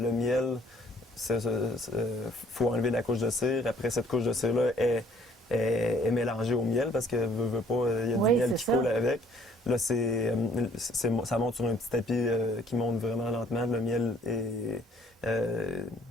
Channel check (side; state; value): both; normal; correlation 0.60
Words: miel. Faut enlever la couche de cire. Après, cette couche de cire-là est mélangée au miel parce que veut pas, il y a du miel qui coule avec. Là, ça monte sur un petit tapis qui monte vraiment lentement. Le miel est